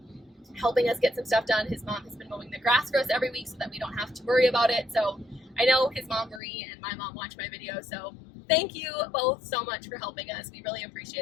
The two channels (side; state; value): right; drops out; at 6.4 s